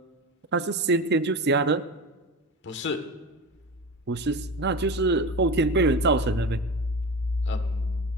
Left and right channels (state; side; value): normal; both; correlation 0.27